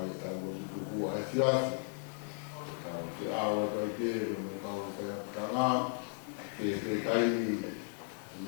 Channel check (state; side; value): silent; right; 54 dB below the other